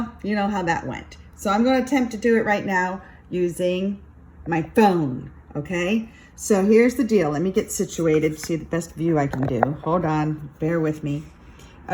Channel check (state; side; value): identical; both; correlation 1.00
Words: you know how that went. So I'm going to attempt to do it right now using my phone, okay? So here's the deal. Let me get situated to see the best view I can do. Hold on, bear with me.